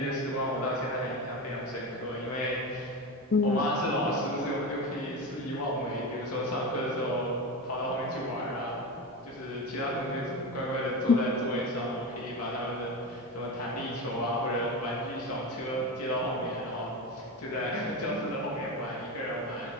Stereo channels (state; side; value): normal; both; correlation 0.22